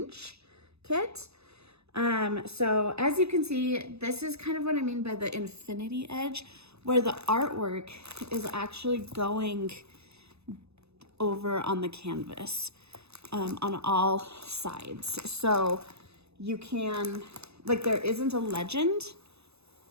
kit. So as you can see, this is kind of what I mean by the infinity edge, where the artwork is actually going over on the canvas, on all sides. So you can, like, there isn't a legend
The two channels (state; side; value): late; left; 0.79 ms